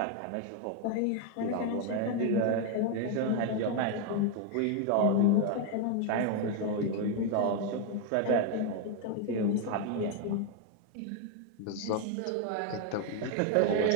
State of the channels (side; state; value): both; different; correlation 0.01